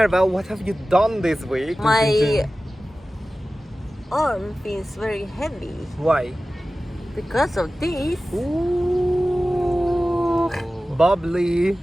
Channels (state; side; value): normal; both; correlation 0.96